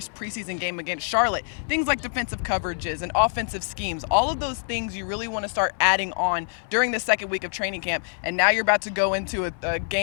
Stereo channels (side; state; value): right; silent; digital silence